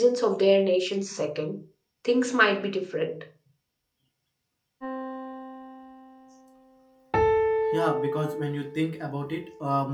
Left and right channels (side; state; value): both; identical; correlation 1.00